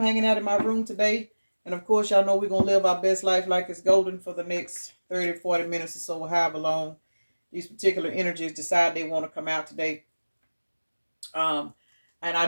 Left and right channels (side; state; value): both; inverted; correlation -1.00